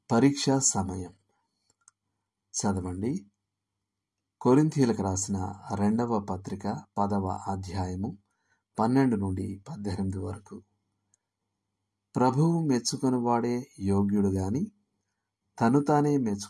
పరీక్షా సమయం. చదవండి. కొరింథీయులకు రాసిన 2వ పత్రిక 10వ అధ్యాయము 12 నుండి 18 వరకు. ప్రభువు మెచ్చుకొనివాడే యోగ్యుడు గాని తను తానే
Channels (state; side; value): identical; both; correlation 1.00